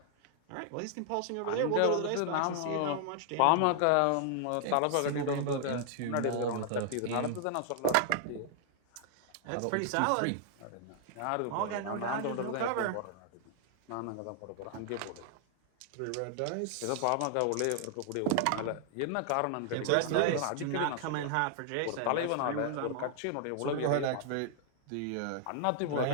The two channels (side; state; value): both; different; correlation 0.00